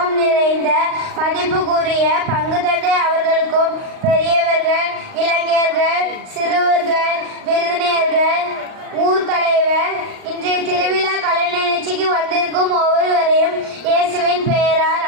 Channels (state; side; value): late; left; 38 ms